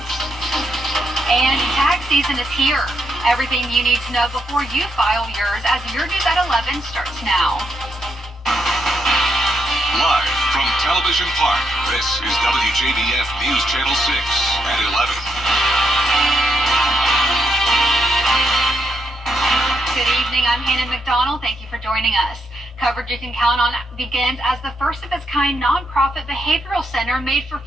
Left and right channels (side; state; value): both; normal; correlation 0.80